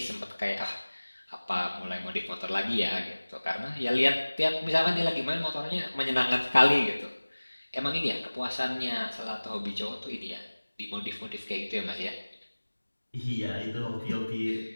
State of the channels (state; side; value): inverted; both; correlation -1.00